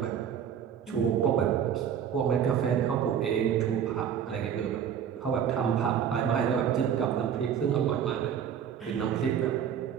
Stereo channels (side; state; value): left; quieter; 8.6 dB